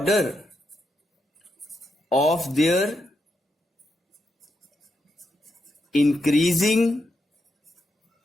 of their increasing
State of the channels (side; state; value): both; normal; correlation 0.83